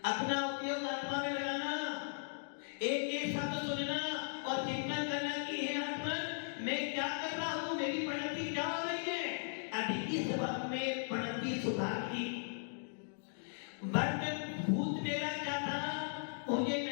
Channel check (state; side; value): silent; right; digital silence